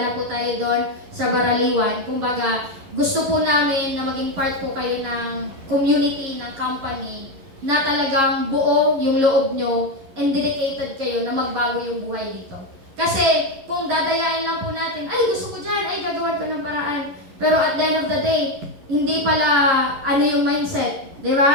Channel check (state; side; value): late; left; 11 ms